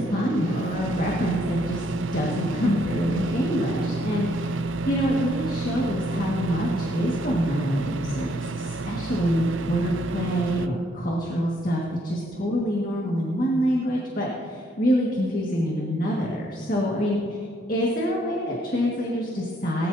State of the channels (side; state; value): both; normal; correlation 0.70